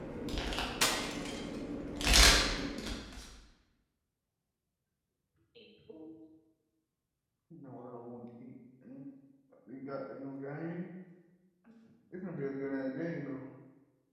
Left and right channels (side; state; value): both; identical; correlation 1.00